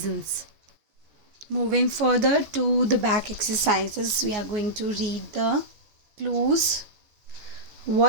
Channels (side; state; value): left; late; 14 ms